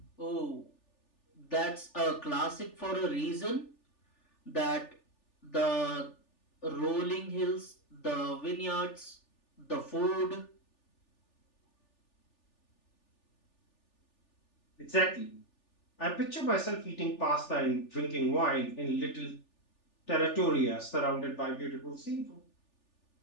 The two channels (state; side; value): late; right; 3.4 ms